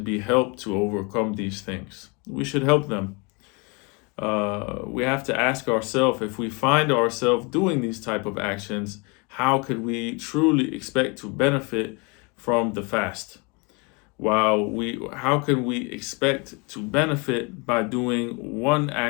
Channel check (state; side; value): quieter; right; 30.3 dB